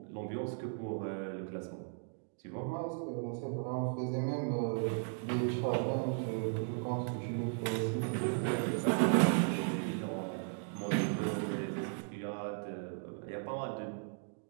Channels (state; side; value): silent; left; 54 dB below the other